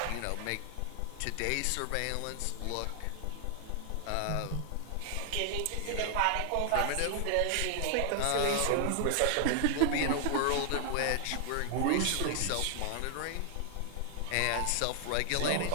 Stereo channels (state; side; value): different; both; correlation 0.00